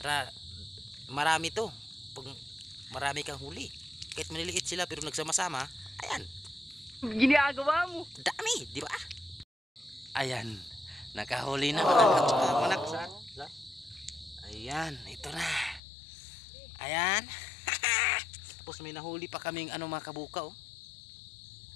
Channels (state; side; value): drops out; right; at 15.8 s